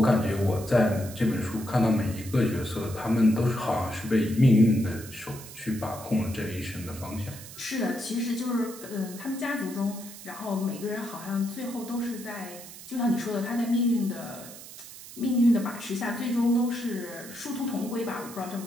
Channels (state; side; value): noise; right; hiss, 15 dB below the sound